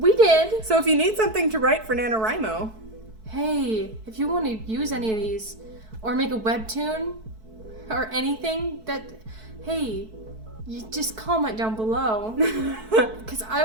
did. So if you need something to write for NaNoWriMo, Hey, if you want to use any of these, or make a webtoon, or anything hey, you just comment down below, because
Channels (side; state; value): left; late; 4.6 ms